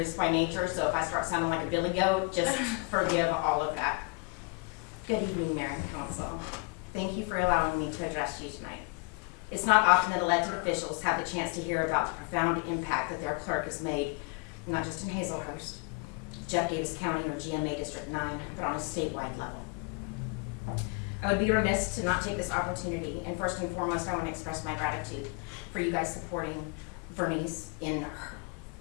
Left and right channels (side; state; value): right; quieter; 32.4 dB